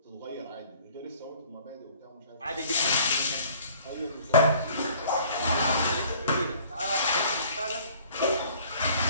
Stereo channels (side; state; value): both; inverted; correlation -0.54